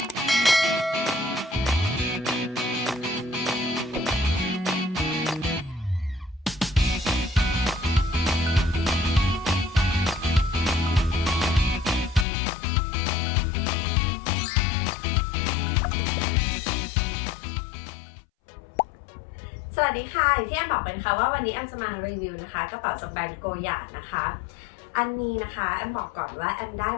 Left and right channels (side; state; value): right; drops out; at 12.2 s